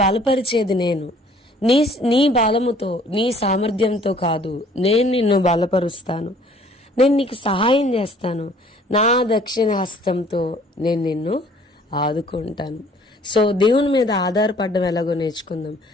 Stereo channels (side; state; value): both; normal; correlation 0.56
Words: బలపరిచేది నేను, నీ బలముతో, నీ సామర్థ్యంతో కాదు, నేను నిన్ను బలపరుస్తాను, నేను నీకు సహాయం చేస్తాను, నా దక్షిణ హస్తంతో నేను నిన్ను ఆదుకుంటాను. సో దేవుని మీద ఆధారపడడం ఎలాగో నేర్చుకుందాం.